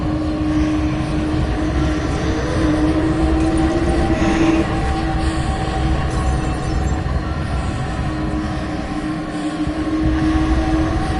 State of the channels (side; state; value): both; identical; correlation 1.00